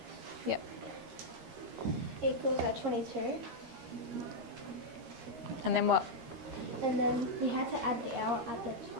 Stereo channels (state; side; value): late; left; 13 ms